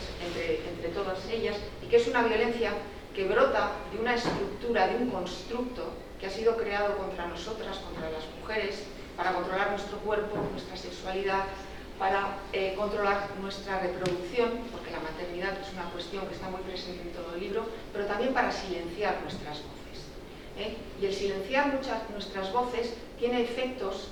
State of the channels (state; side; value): identical; both; correlation 1.00